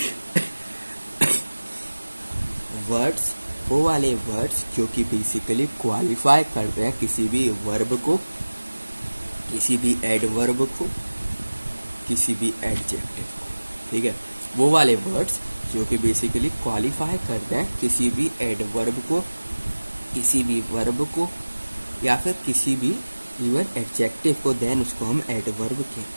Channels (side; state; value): both; inverted; correlation -1.00